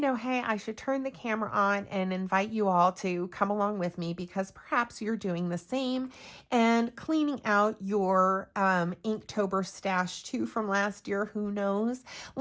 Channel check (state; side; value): identical; both; correlation 1.00